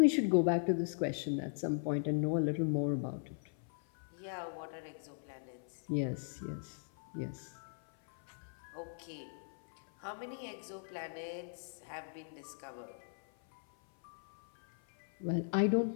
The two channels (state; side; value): silent; right; 52 dB below the other